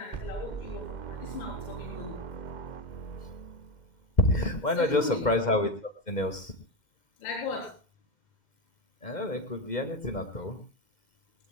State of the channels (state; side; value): late; right; 2.1 ms